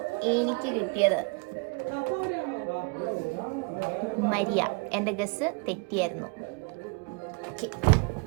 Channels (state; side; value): quieter; left; 31.8 dB